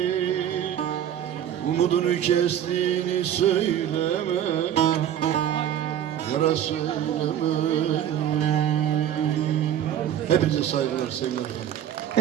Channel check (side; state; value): left; quieter; 10.3 dB